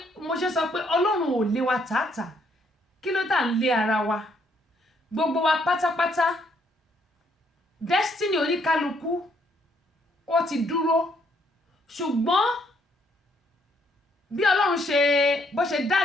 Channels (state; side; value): normal; both; correlation 0.70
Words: mo ṣe sọ pé Ọlọ́run ò lé wa tààtà kí ló tà ń lé ara wa gbogbo wa pátápátá destiny oníkálukú ó ti dúró ṣùgbọ́n bí Ọlọ́run ṣe bó ṣe